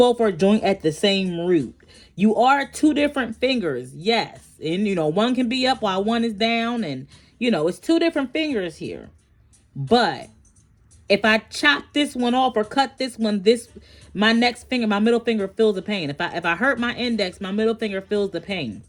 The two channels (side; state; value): both; identical; correlation 1.00